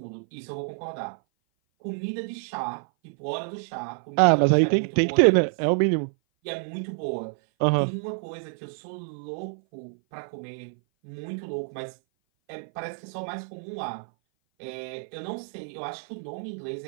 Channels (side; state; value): left; silent; 56 dB below the other